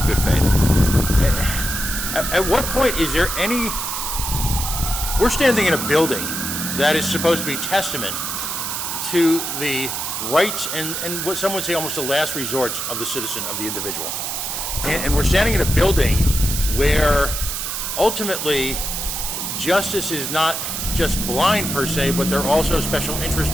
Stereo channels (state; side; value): noise; right; hiss, 3 dB below the sound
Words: good faith. At what point is there any... We're standing in a building that is supposed to be testament to the rights and what some would say almost the last resort of the citizen, of the individual. And we're standing in a building where ultimately justice is not just blind per se, but they're also special